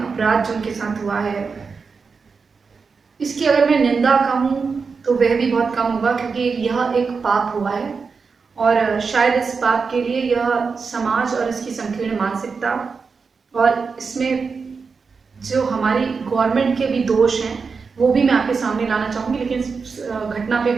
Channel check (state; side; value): quieter; left; 5.1 dB